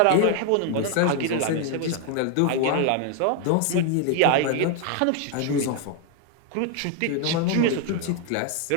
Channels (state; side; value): different; both; correlation 0.00